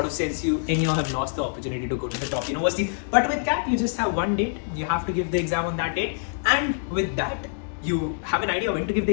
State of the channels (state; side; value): silent; right; digital silence